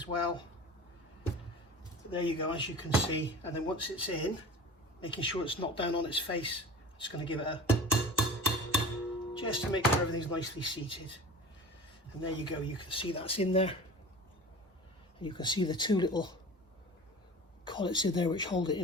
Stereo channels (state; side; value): normal; both; correlation 0.37